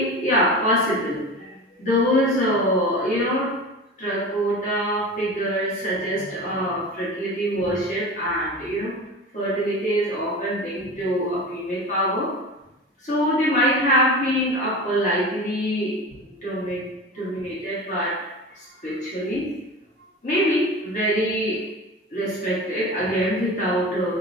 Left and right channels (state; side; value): normal; both; correlation 0.32